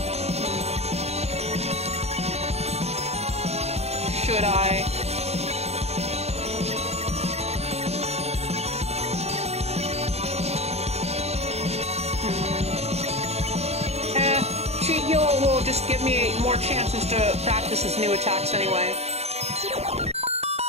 Should I? Cheat heal will just give me more chances to practice his new attacks anyway.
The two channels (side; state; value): left; late; 0.31 ms